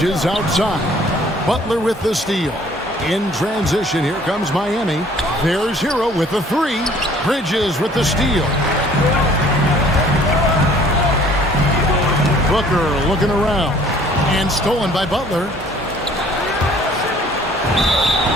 outside. Butler with the steal. In transition, here comes Miami. There's Hero with the 3. Bridges with the steal. Booker looking around. And stolen by Butler.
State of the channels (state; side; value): normal; both; correlation 0.55